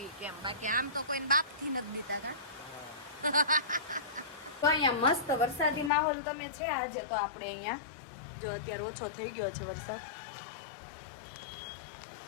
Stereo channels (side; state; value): right; drops out; at 5.9 s